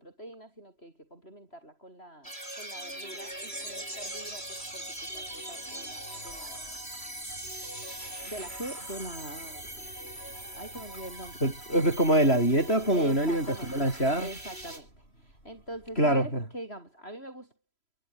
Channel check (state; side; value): late; right; 3.0 ms